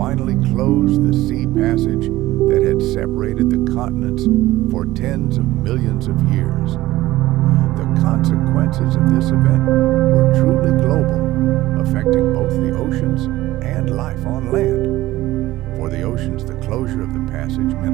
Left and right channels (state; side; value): quieter; left; 16.7 dB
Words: closed the sea passage that had separated the continents for tens of millions of years. The consequences of this event were truly global, affecting both the oceans and life on land. For the oceans, the closure of the passage